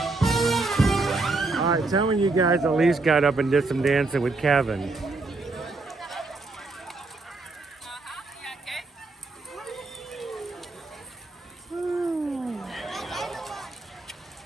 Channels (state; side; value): quieter; left; 3.4 dB